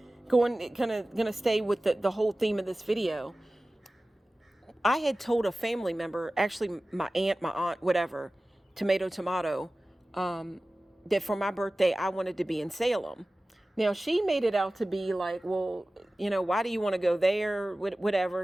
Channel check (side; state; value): both; normal; correlation 0.97